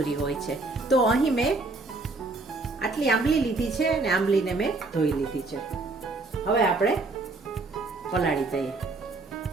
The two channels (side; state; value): left; quieter; 3.4 dB